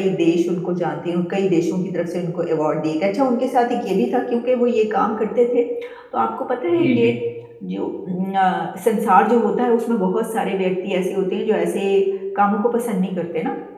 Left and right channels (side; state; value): both; identical; correlation 1.00